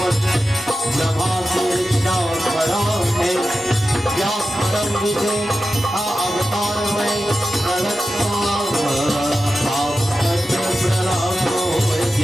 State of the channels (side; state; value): both; normal; correlation 0.92